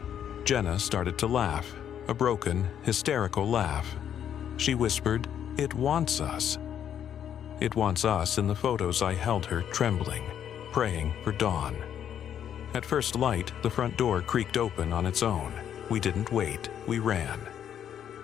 Jenna started to laugh, a broken, hysterical laugh. She whispered, "It wants us." It wants us in the photos I held her trembling, praying for dawn. At first light, the front door creaked open on its own. We didn't wait, we ran.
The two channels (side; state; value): right; quieter; 9.4 dB